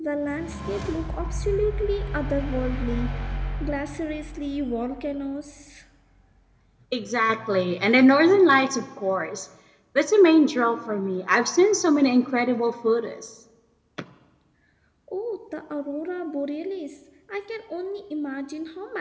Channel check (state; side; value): identical; both; correlation 1.00